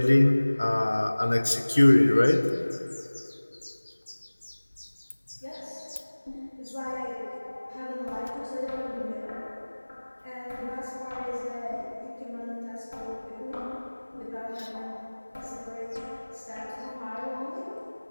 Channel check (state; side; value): inverted; both; correlation -1.00